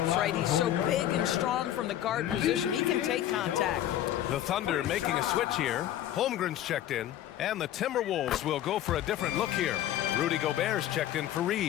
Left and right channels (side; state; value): right; quieter; 12.1 dB